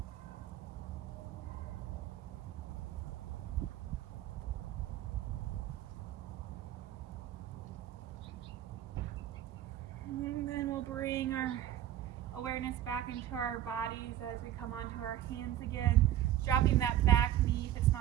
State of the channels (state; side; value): quieter; left; 12.2 dB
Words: And then we'll bring our awareness back into our bodies as we come onto our hands again. Dropping that back knee if it's